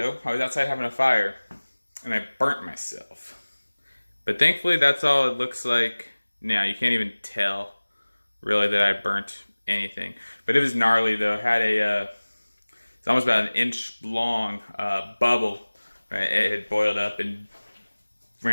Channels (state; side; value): inverted; both; correlation -1.00